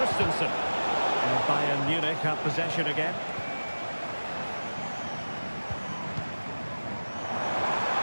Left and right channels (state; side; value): inverted; both; correlation -1.00